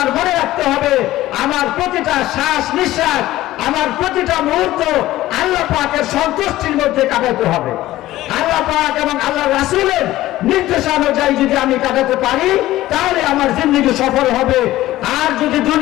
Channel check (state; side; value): quieter; right; 15.7 dB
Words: মনে রাখতে হবে আমার প্রতিটা শ্বাস নিঃশ্বাস, আমার প্রতিটা মুহূর্ত আল্লাহ পাকের সন্তুষ্টির মধ্যে কাটাতে হবে। আল্লাহ পাক এবং আল্লাহ রাসূলের নির্দেশানুযায়ী যদি আমি কাটাতে পারি, তাহলে আমার জিন্দগি সফল হবে। আর যদি